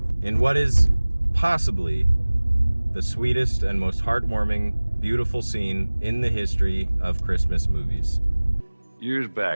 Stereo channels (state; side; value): inverted; both; correlation -1.00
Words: in what is possibly the sweetest and most heartwarming, beautiful scene in the history of Christmas movies. Years